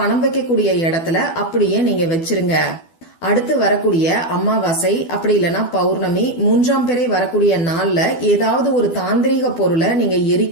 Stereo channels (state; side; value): late; right; 12 ms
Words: வைக்கக்கூடிய இடத்துல அப்படியே நீங்க வச்சிருங்க. அடுத்து வரக்கூடிய அமாவாசை, அப்படி இல்லைன்னா பௌர்ணமி, 3ஆம் பிறை வரக்கூடிய நாள்ல ஏதாவது ஒரு தாந்திரீக பொருளை நீங்க